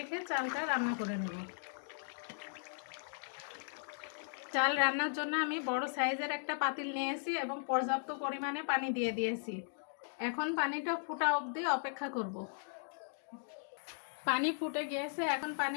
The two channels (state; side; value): silent; right; digital silence